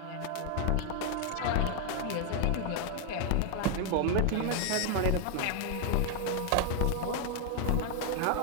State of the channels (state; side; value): different; both; correlation 0.00